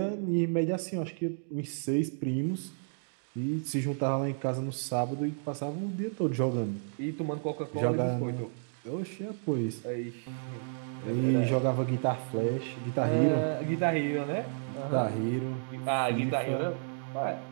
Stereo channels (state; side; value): silent; left; digital silence